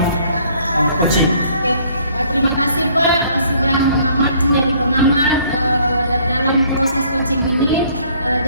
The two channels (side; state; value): both; inverted; correlation -0.60